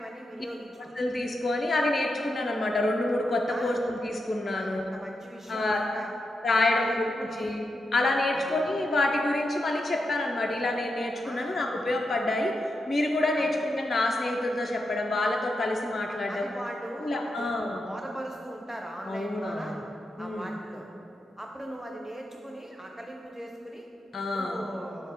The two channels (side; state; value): both; normal; correlation 0.86